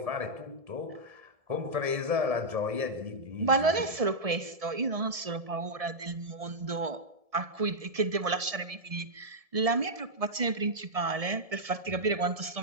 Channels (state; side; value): late; left; 1.7 ms